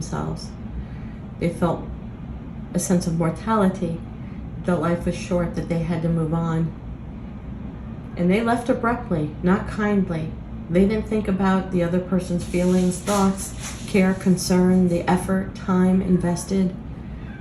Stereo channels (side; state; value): both; identical; correlation 1.00